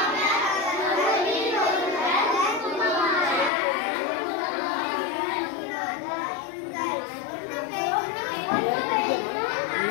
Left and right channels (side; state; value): right; drops out; at 3.5 s